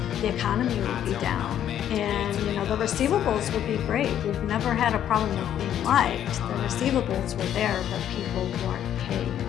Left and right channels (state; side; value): quieter; right; 10.4 dB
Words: the economy would be down, and the receivables would be great. We've never had a problem with being liked. The receivables were there, but people weren't paying.